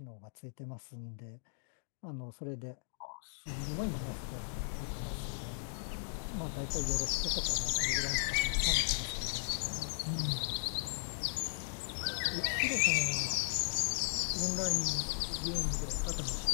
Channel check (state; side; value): silent; right; digital silence